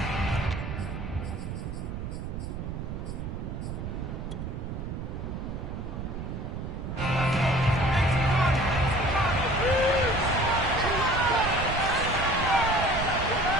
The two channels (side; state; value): right; noise; rumble, 6 dB below the sound